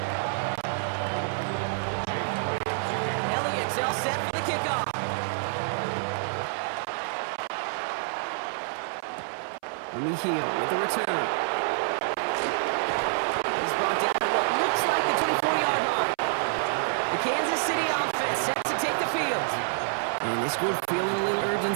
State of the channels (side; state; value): left; silent; 60 dB below the other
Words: Elliott's all set for the kickoff. Hill with the return. He's brought down at what looks like the 24-yard line. The Kansas City offense set to take the field. And this group feeling a little